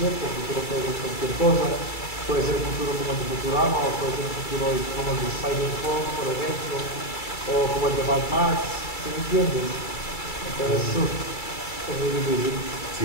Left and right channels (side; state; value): right; late; 2.3 ms